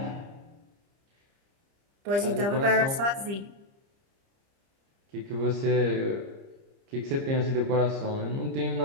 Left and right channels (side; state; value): left; late; 30 ms